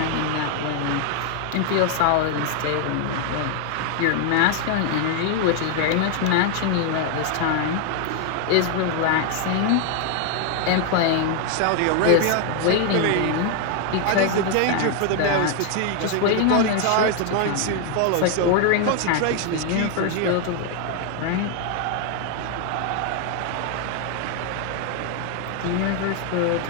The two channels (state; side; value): different; both; correlation 0.00